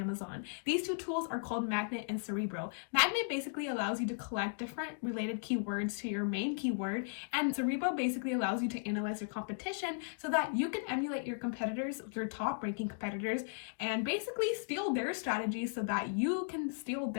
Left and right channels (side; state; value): right; silent; digital silence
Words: These two tools are called Magnet and Cerebro. Magnet basically allows you to collect different related keywords to your main keyword, and Cerebro basically allows you to analyze your competition so that you can emulate your competitors, your top ranking competitors, and basically steal their strategies so that you can steal